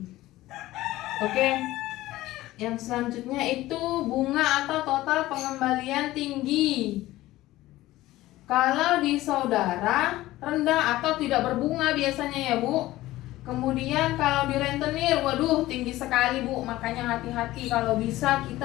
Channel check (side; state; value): right; quieter; 16.7 dB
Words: Oke. Yang selanjutnya itu bunga atau total pengembalian tinggi. Kalau di saudara rendah atau tidak berbunga biasanya ya Bu. Kemudian kalau di rentenir, waduh tinggi sekali Bu. Makanya hati-hati, kalau bisa